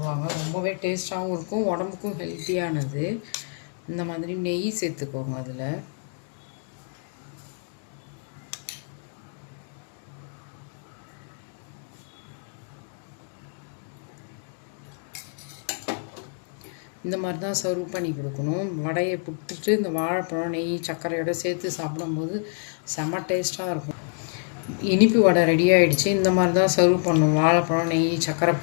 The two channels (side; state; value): right; silent; 58 dB below the other